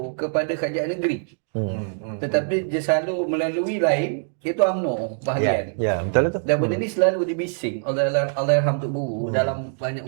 kepada kerajaan negeri. Tetapi dia salur melalui lain, iaitu UMNO bahagian. Ya, betul lah tu. Dan benda ni selalu dibising oleh Allahyarham Tok Guru dalam banyak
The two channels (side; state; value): left; silent; digital silence